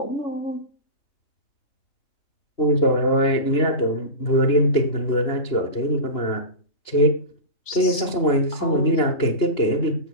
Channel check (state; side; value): late; right; 2.9 ms